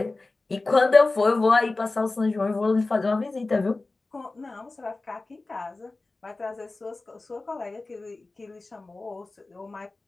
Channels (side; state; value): right; quieter; 3.3 dB